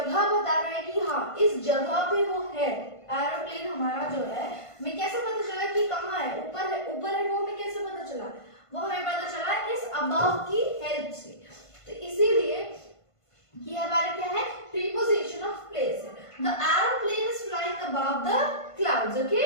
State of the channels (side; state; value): right; late; 1.5 ms